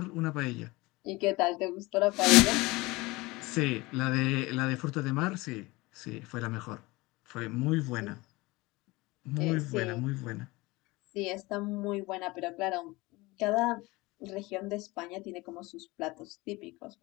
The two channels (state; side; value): quieter; right; 22.3 dB